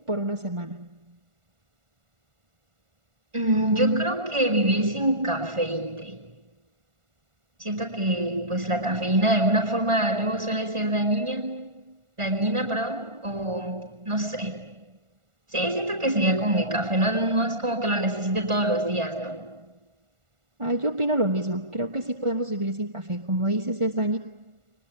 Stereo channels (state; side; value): late; left; 1.4 ms